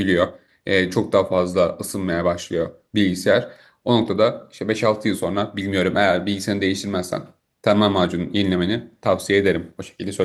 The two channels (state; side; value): identical; both; correlation 1.00